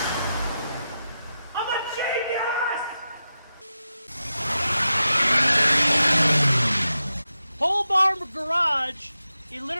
I'm a genius! Pole barn garage. He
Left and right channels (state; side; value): inverted; both; correlation -0.90